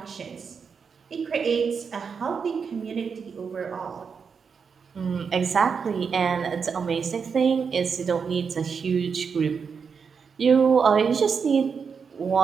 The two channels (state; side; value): quieter; left; 6.0 dB